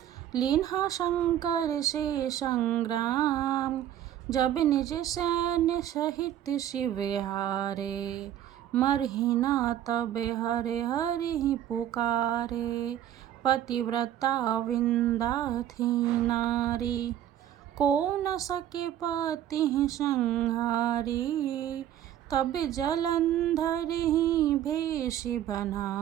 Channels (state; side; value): quieter; left; 11.4 dB